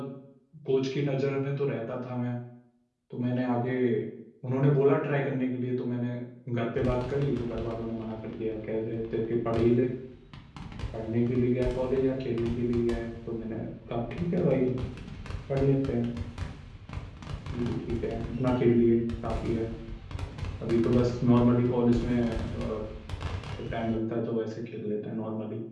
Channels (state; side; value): identical; both; correlation 1.00